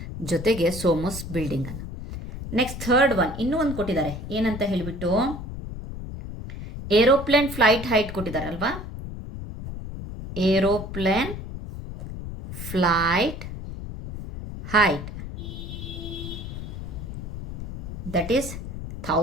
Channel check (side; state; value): left; noise; rumble, 8 dB below the sound